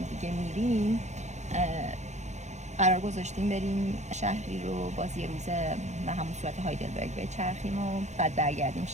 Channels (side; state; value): left; late; 0.33 ms